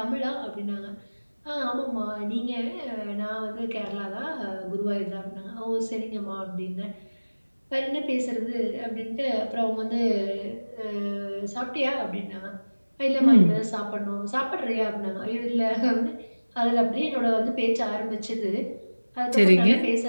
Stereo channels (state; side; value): inverted; both; correlation -1.00